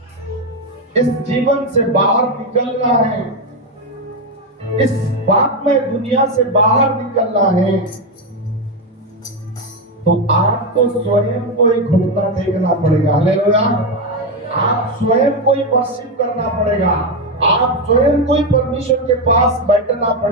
इस जीवन से बाहर निकलना है, इस बात में दुनिया से बाहर निकलना है, तो आपको स्वयं को ही घुटना टेकना पड़ेगा। हालेलुया। आप स्वयं को ही वर्शिप करना पड़ेगा, आप स्वयं को ही परमेश्वर के पास बैठना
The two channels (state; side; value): normal; both; correlation 0.09